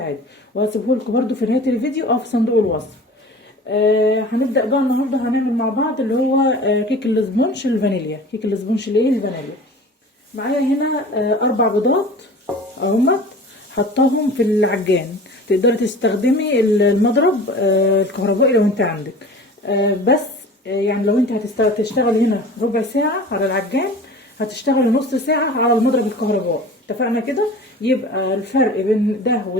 وهسيبه لكم برضو في نهاية الفيديو او في صندوق الوصف. هنبدأ بقى النهارده هنعمل مع بعض اللي هو كيك الاسبونج الفانيليا. كيك الاسبونج الايه الفانيليا. معايا هنا 4 بيضات اهمت، حطاهم في العجان. تقدري تستخدمي المضرب الكهربائي لو انت عندك، بس يعني لو انت هتشتغلي هنا ربع ساعة على العجان، هتشتغلي نص ساعة على المضرب الكهربائي. اتفقنا كده؟ يبقى الفرق بين ده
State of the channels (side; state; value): both; normal; correlation 0.40